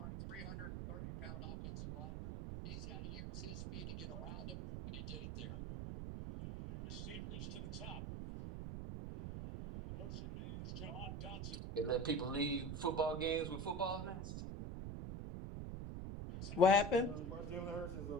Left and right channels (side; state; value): right; noise; rumble, 5 dB below the sound